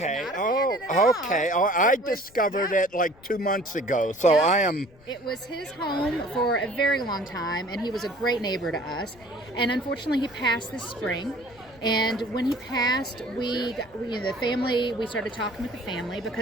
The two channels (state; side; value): noise; left; rumble, 26 dB below the sound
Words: I discovered it like 2 months ago, so Yeah. I am... It was his home for a very long time, and he was a great neighbor to us. And unfortunately, he passed this spring. And when he passed, we started talking with the family